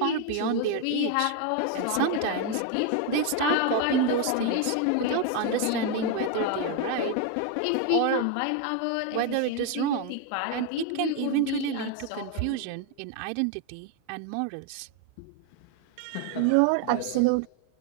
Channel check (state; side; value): different; both; correlation 0.01